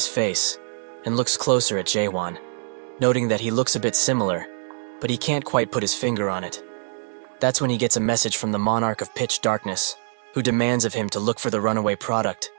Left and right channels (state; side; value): silent; left; digital silence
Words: face, and looks closer at Jae-won, noting that he looks a bit similar, but he can't quite put his finger on it. That's when he gets a message from the Monarch of Pitch Darkness, who demands of him to look for the runaway product